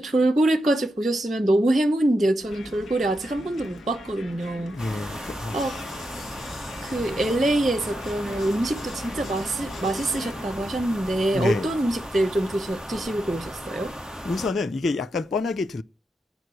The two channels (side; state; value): both; normal; correlation 0.86